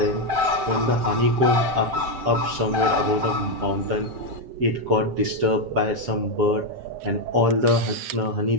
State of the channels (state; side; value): late; left; 7.7 ms